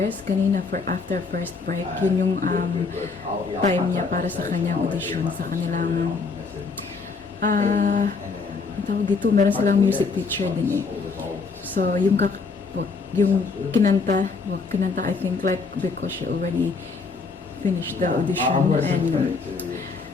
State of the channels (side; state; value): right; quieter; 4.5 dB